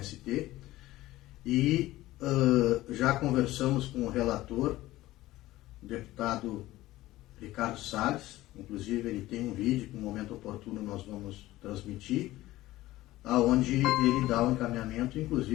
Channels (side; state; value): right; quieter; 16.7 dB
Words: E já conversamos com o relator, o deputado Ricardo Salles, inclusive ele tem um vídeo que no momento oportuno nós vamos transmitir, aonde ele dá um encaminhamento,